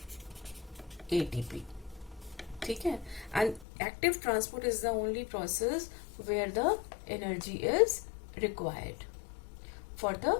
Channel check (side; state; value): right; drops out; at 3.7 s